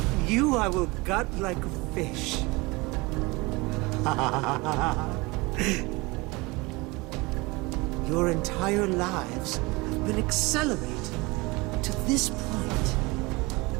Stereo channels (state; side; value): quieter; left; 24.3 dB